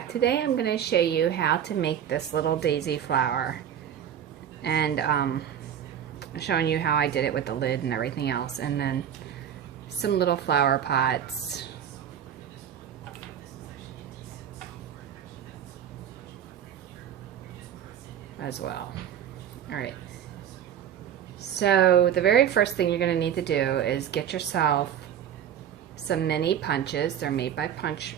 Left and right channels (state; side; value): quieter; left; 9.4 dB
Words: Today I'm going to show you how to make this little daisy flower, and showing you how I did it with the lid and everything else, and then some little flower pots. As well. Alright, so the very first thing you're going to need to do is get yourself some mini punches. They're made by Punch